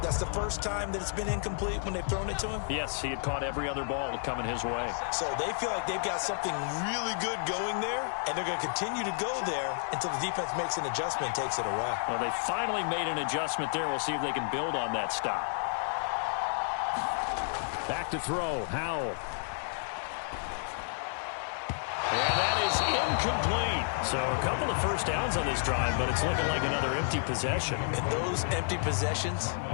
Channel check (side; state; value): right; silent; digital silence